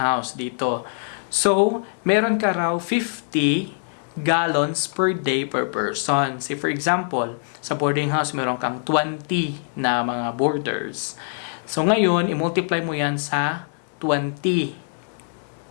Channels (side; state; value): right; silent; digital silence